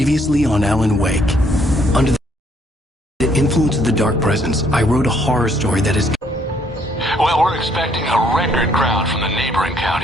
on Alan Wake. Under the influence of the Dark Presence, I wrote a horror story that is... Well, we're expecting a record crowd from the neighboring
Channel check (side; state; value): both; normal; correlation 0.67